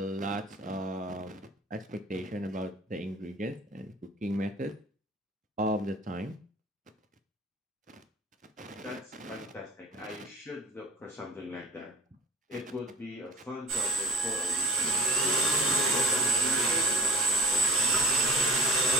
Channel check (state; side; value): normal; both; correlation 0.45